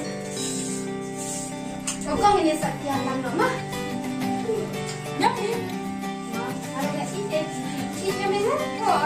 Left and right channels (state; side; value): identical; both; correlation 1.00